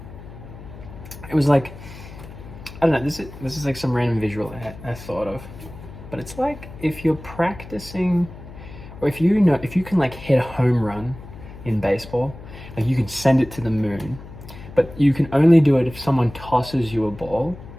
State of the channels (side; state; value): left; noise; hum, 15 dB below the sound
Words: I don't know, this is like some random visual I thought of, but it's like if you're practicing, or if you can like hit a home run in baseball, like you can send it to the moon, but you can only do it if someone tosses you a ball.